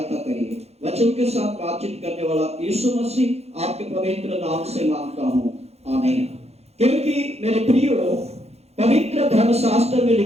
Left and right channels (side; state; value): left; late; 0.31 ms